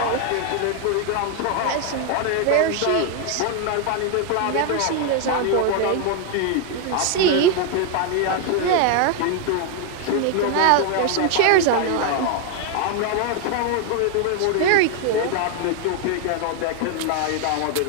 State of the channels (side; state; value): both; different; correlation 0.00